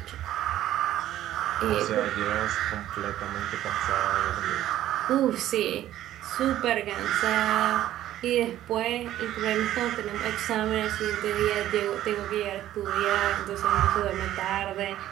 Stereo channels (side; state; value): left; quieter; 13.0 dB